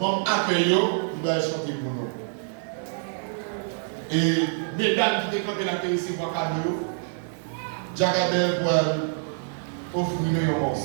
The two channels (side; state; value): left; silent; digital silence